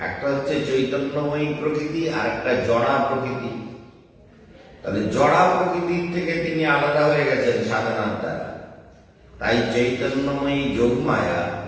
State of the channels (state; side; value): identical; both; correlation 1.00